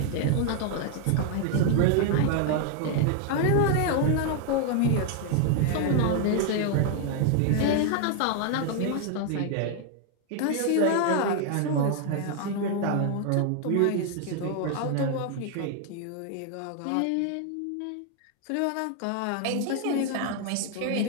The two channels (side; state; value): both; different; correlation 0.00